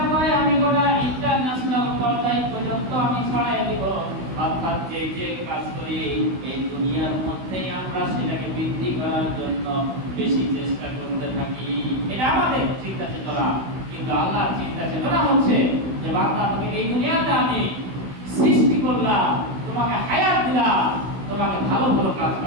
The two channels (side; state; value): left; late; 16 ms